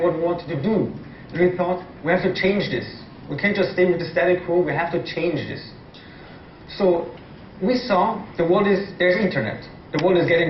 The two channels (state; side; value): identical; both; correlation 1.00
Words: what we wanted to do. And we thought, we have to change this. We can't just stay with the static quo, we have to change this. So we saw there's internet. The world is